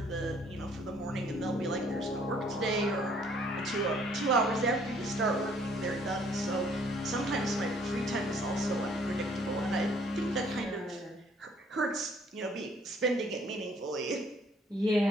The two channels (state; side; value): normal; both; correlation 0.61